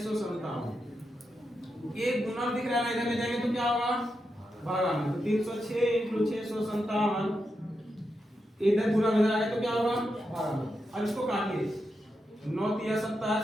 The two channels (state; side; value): normal; both; correlation 0.86